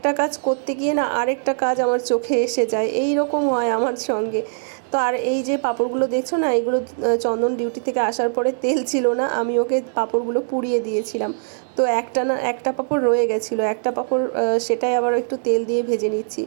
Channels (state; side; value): silent; left; digital silence